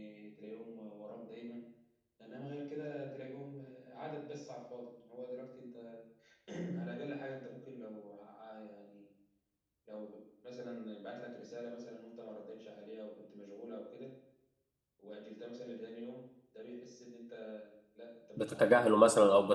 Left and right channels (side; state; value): both; identical; correlation 1.00